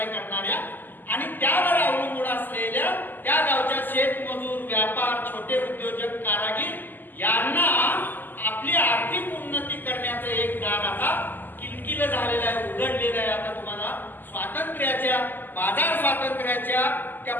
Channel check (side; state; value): right; late; 0.089 ms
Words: करणाऱ्या आणि त्यावर अवलंबून असलेल्या त्या गावच्या शेतमजूर असलेल्या बाजार स्वातंत्र्याच्या त्या